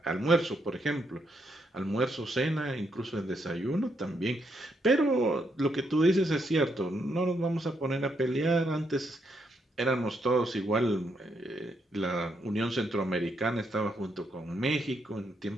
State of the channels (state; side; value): normal; both; correlation 0.77